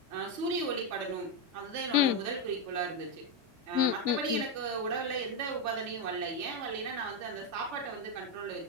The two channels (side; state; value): left; late; 3.4 ms